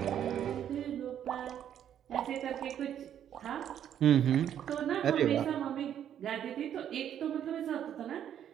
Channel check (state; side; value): quieter; left; 9.9 dB